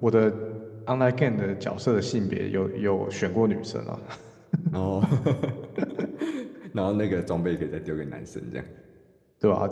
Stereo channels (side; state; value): both; identical; correlation 1.00